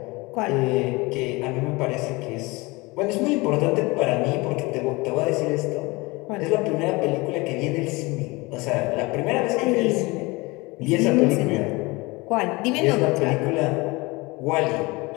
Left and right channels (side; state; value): right; quieter; 24.1 dB